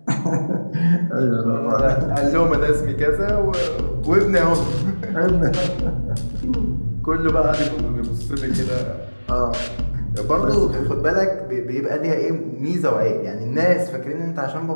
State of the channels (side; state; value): both; inverted; correlation -1.00